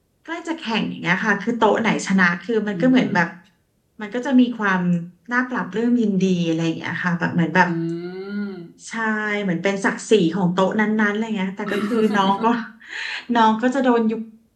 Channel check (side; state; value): both; identical; correlation 1.00